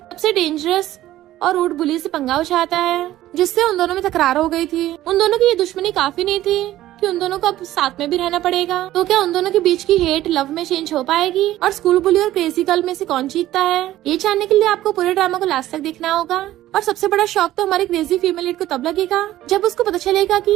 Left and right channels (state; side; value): quieter; left; 14.4 dB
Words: डेंजरस और रूड बुली से पंगा उठाता है, जिससे उन दोनों में तकरार हो गई थी। उन दोनों की ये दुश्मनी काफी नहीं थी कि उन दोनों को अब साथ में भी रहना पड़ेगा। तो क्या उन दोनों के बीच की हेट लव में चेंज हो पाएगी और स्कूल बुली और क्रेजी गर्ल में से कौन जीतता है? ये जानने के लिए आपको पूरे ड्रामा को लास्ट तक देखना होगा। और सबसे बड़ा शॉक तो हमारी क्रेजी फीमेल लीड को तब लगेगा जब उसको पता चलेगा